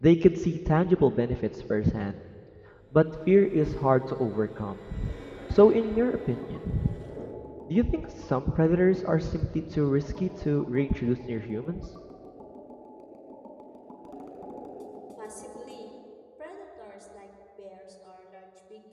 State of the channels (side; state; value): both; identical; correlation 1.00